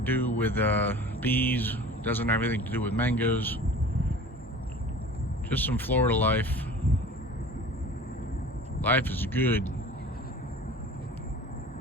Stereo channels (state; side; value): normal; both; correlation 0.41